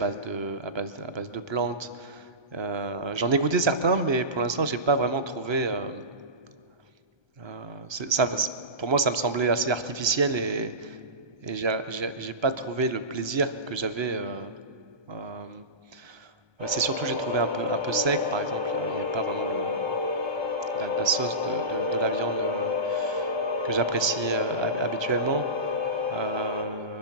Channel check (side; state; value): left; late; 1.3 ms